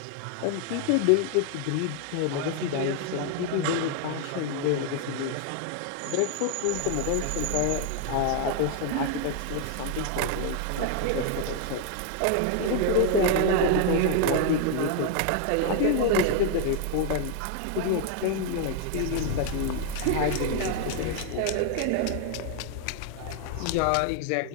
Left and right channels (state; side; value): different; both; correlation 0.00